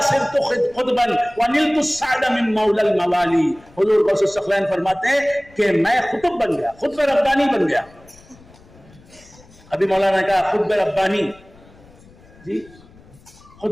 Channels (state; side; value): noise; left; rumble, 25 dB below the sound